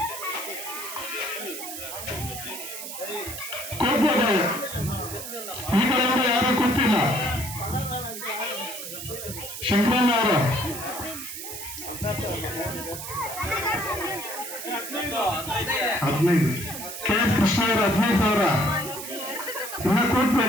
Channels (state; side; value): noise; right; hiss, 8 dB below the sound